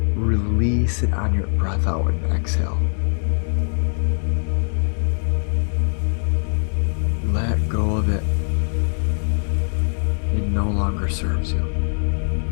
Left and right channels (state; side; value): silent; right; 64 dB below the other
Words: release it on your breath out and exhale. Let go of it. It no longer serves you.